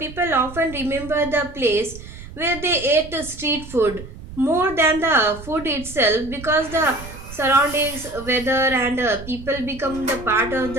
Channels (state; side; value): noise; right; rumble, 14 dB below the sound